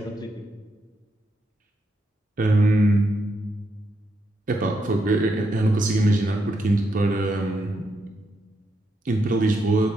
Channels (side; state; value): both; normal; correlation 0.81